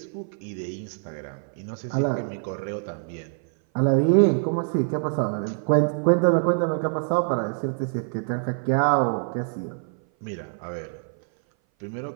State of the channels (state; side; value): silent; left; 58 dB below the other